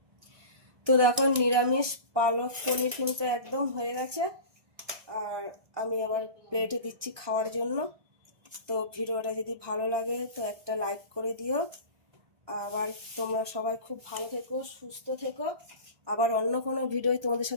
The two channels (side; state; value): left; late; 1.2 ms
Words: তো দেখো নিরামিষ পালক পনির কিন্তু একদম হয়ে গেছে। আর আমি আবার প্লেটে দিচ্ছি খাওয়ার জন্য। তো ভিডিওটা যদি ভালো লাগে তো একটা লাইক করে দিও। আবার তোমরা সবাই খুব ভালো থেকো, সুস্থ থেকো। আবার অন্য কোনো ভিডিও তোমাদের